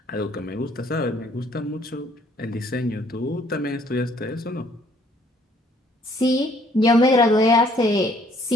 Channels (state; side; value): normal; both; correlation 0.63